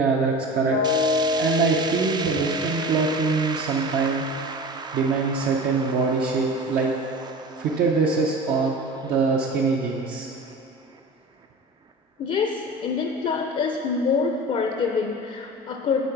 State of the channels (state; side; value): normal; both; correlation 0.34